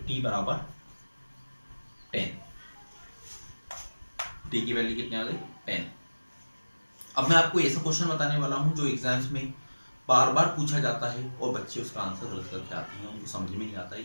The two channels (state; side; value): inverted; both; correlation -1.00